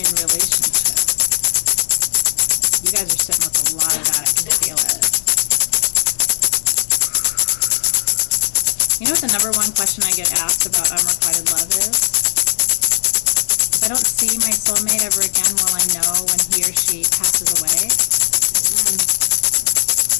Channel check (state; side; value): silent; right; digital silence